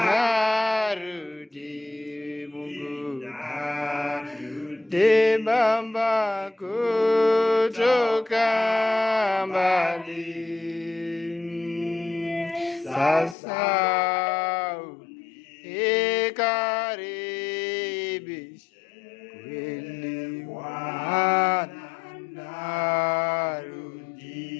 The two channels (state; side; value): drops out; right; at 13.4 s